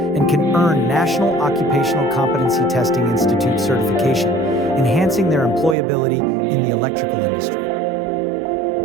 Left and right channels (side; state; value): left; drops out; at 5.8 s